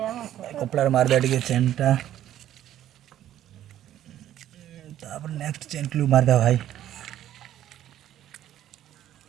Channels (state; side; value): quieter; left; 12.0 dB